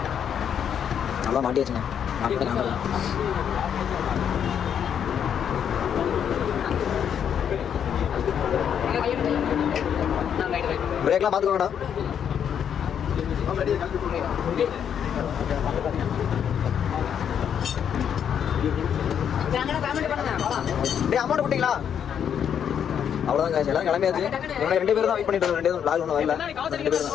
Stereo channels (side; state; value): right; quieter; 8.5 dB